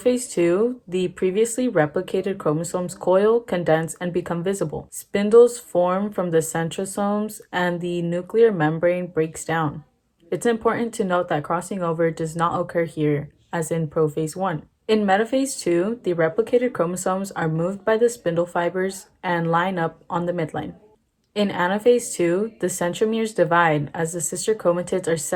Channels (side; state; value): both; identical; correlation 1.00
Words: 2, the previously replicated chromosomes coil, condense, and become visible. Spindles form from the centrosomes, and the nuclear membrane breaks down. It's important to note that crossing over does not occur here, as in prophase 1. In metaphase 2, the replicated chromosomes are moved by the spindle fibers and line up on the midline. In anaphase 2, the centromeres divide as the sister chromatids are